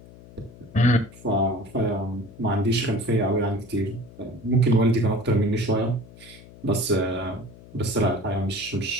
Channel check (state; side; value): noise; left; hum, 20 dB below the sound